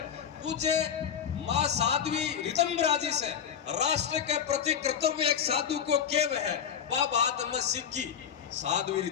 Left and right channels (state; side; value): quieter; right; 8.1 dB